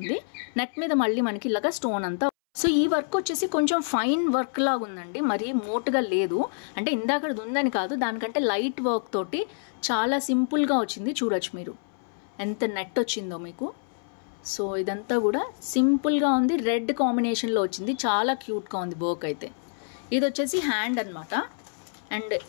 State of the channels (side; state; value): right; silent; 60 dB below the other